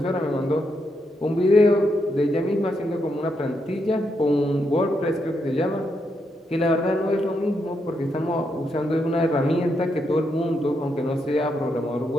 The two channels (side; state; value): both; normal; correlation 0.81